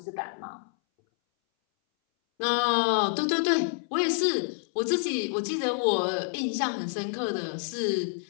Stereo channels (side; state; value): right; silent; 59 dB below the other